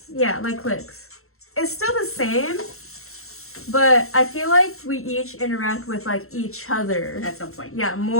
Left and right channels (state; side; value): late; right; 0.63 ms